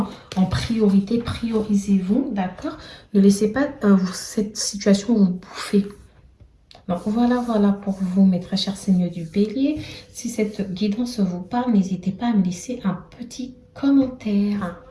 en priorité, priorisez-vous, d'accord? Ne laissez pas cette situation vous bouffer. Donc voilà pour vous, mes très chers signes du bélier. Si cette guidance vous parle, n'hésitez pas à me laisser un petit commentaire.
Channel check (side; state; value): both; identical; correlation 1.00